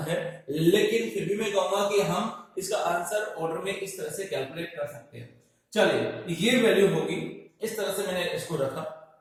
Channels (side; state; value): both; identical; correlation 1.00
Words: है, लेकिन फिर भी मैं कहूंगा कि हम इसका आंसर ऑर्डर में इस तरह से कैलकुलेट कर सकते हैं। चलिए, ये वैल्यू होगी, इस तरह से मैंने इसको रखा।